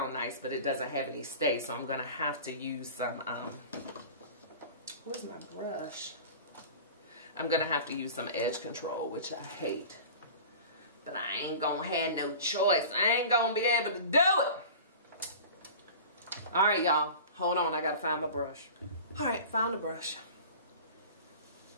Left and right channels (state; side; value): inverted; both; correlation -0.38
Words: nice, but it doesn't have any stay. So I'm going to have to use some, where's my brush? I'm going to have to use some edge control, which I hate. But I ain't going to have no choice. I ain't going to be able to do it. All right, y'all. Hold on. I got to find my brush. All right, found the brush.